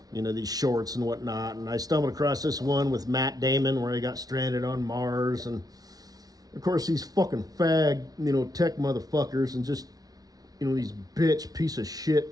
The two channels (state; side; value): late; left; 0.18 ms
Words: and these shorts and whatnot. And I stumbled across this one with Matt Damon where he got stranded on Mars, and of course these fucking fag, tech motherfuckers, and just these bitch piece of